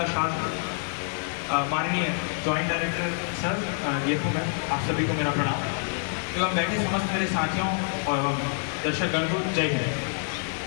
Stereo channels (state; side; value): silent; right; 60 dB below the other